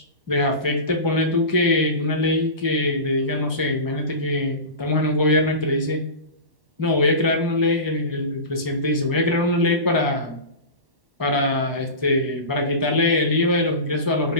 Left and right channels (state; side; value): late; left; 1.1 ms